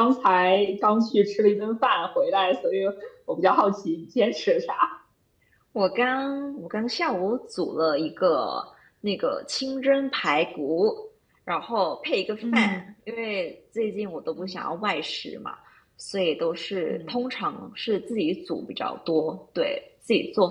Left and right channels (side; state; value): both; identical; correlation 1.00